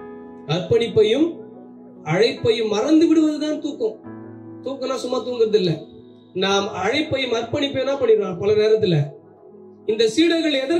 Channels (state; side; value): identical; both; correlation 1.00